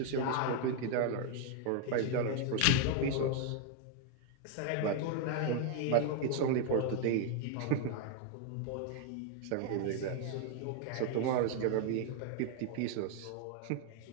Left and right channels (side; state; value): both; different; correlation 0.00